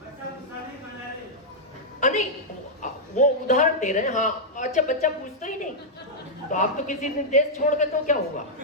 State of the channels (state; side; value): normal; both; correlation -0.06